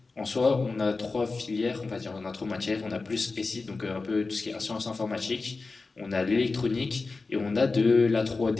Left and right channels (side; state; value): right; quieter; 3.9 dB